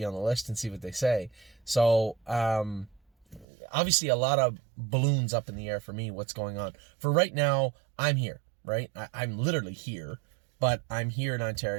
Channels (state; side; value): drops out; left; at 3.5 s